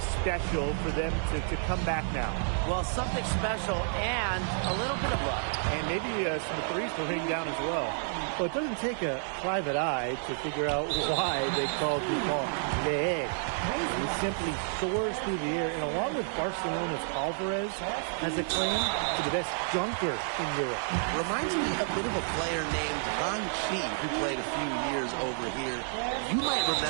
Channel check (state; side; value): silent; left; digital silence